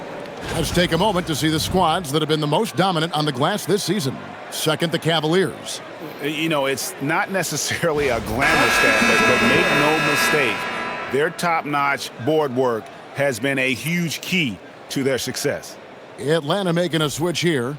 Let's take a moment to see the squads that have been the most dominant on the glass this season. Second, the Cavaliers. You know, it's not necessarily a glamour stat, but make no mistake, their top-notch board work has been a huge key to their success. Atlanta making a switch here.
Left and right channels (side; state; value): both; identical; correlation 1.00